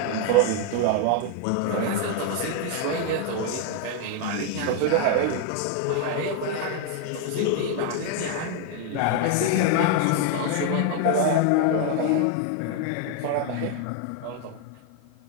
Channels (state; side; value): different; both; correlation 0.01